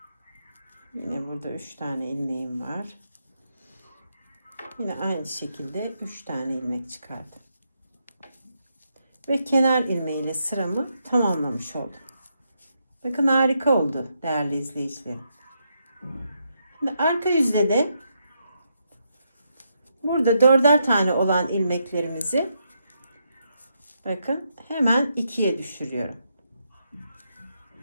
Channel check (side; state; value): both; inverted; correlation -0.80